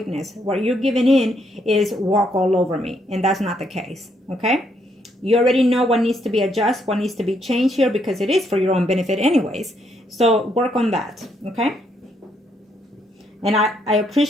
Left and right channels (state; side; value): normal; both; correlation 0.74